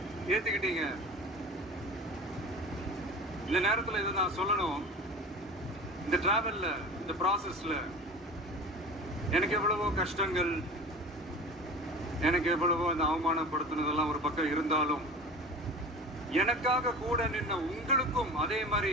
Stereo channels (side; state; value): both; normal; correlation 0.36